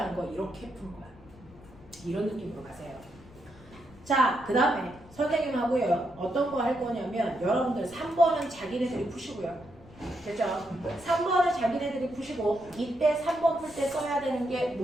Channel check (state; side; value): noise; left; rumble, 22 dB below the sound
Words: 거 이렇게 푼 거야. 이런 느낌으로 가세요. 자, 그 다음에 선생님하고요. 어떤 거 할 거냐면 여러분들 3번은 자기네들이 푸시고요. 됐죠? 3번을 자기네들이 푸시고 이때 3번 풀 때 써야 되는 게